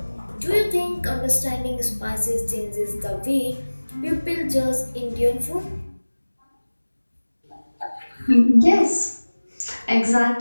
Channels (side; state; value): both; inverted; correlation -1.00